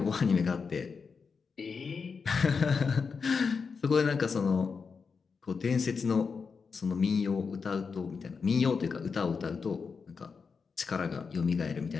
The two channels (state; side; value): quieter; right; 5.4 dB